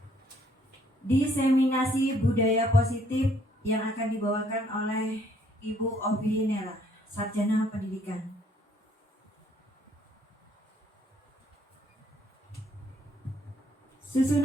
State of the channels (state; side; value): normal; both; correlation 0.65